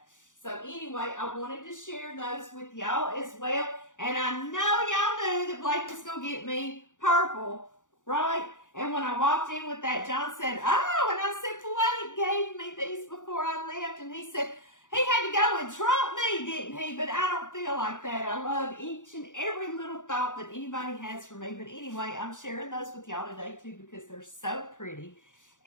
So anyway, I wanted to share those with y'all as well. And I know y'all knew that Blake was going to get me purple, right? And when I walked in with that, John said, oh, and I said, Blake gave me these before I left. And he said, he had to go and trump me, didn't he? But I don't feel like that. I love each and every little thought that anybody has for me. But anyway, I'm sharing those with y'all today too, because they're so pretty.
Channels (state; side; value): late; right; 0.87 ms